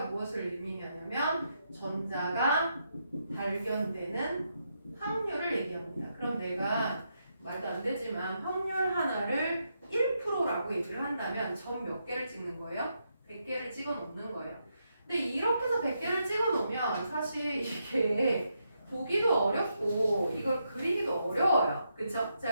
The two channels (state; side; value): inverted; both; correlation -0.81